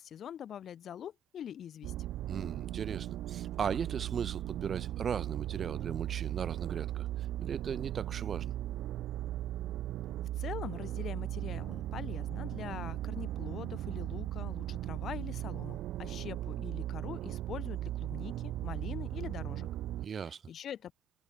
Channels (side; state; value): left; quieter; 7.1 dB